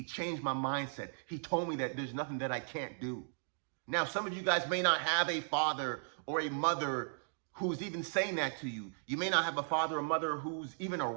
changed my mindset. He told me that there's nothing that I can't do. Now, some of you guys may not have a father or a mother who's even saying that to you. You may not have a father or mother who's even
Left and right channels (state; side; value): silent; left; digital silence